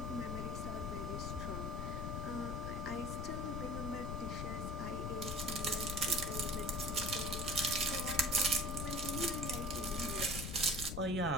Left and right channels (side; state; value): left; noise; rumble, 3 dB below the sound